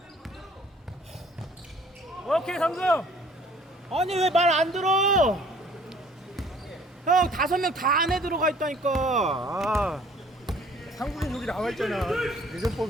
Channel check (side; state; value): both; normal; correlation 0.55